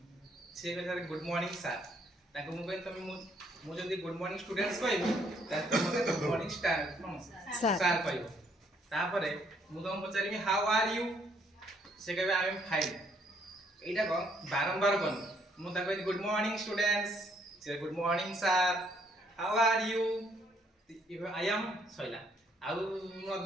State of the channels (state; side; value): normal; both; correlation 0.68